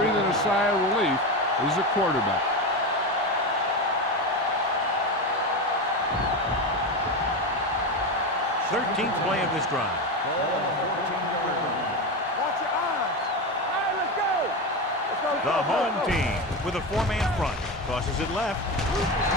a sigh of relief is the quarterback. 13th play of this drive. Watch your eyes. All right, let's go. Let's go. The home team with a four-man front. Tosses it left.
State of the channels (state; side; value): normal; both; correlation 0.18